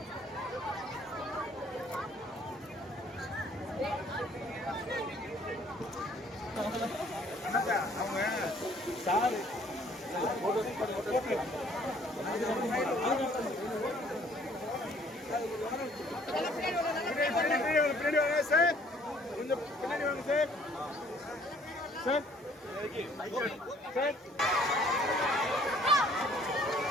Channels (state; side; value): normal; both; correlation 0.59